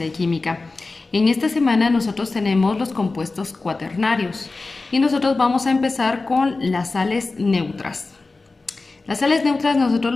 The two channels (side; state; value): right; quieter; 3.6 dB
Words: química. En esta semana nosotros tenemos los compuestos cuaternarios y nosotros vamos a empezar con las sales neutras. Las sales neutras nosotros